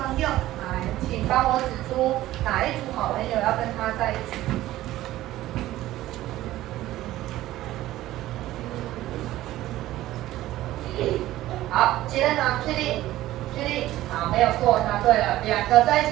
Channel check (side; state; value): left; quieter; 15.3 dB